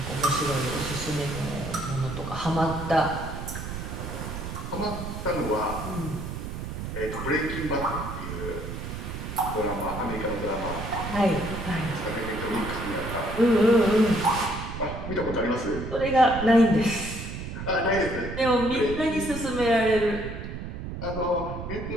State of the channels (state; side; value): noise; right; rumble, 7 dB below the sound